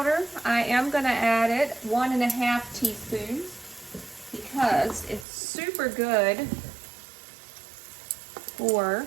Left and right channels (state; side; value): drops out; left; at 5.2 s